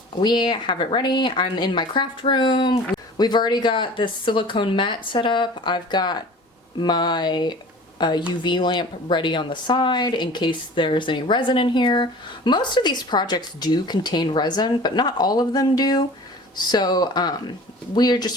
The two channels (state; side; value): normal; both; correlation 0.42